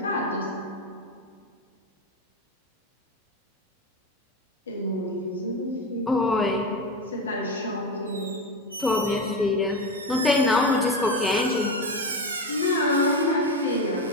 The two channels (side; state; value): both; normal; correlation 0.19